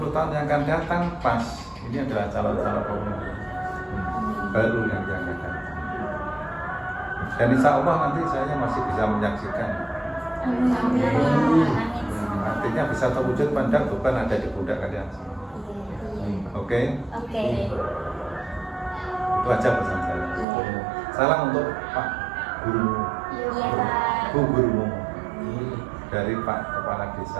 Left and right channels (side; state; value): left; drops out; at 20.5 s